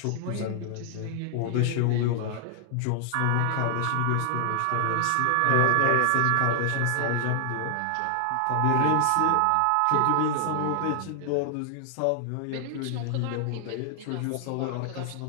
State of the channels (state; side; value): different; both; correlation 0.00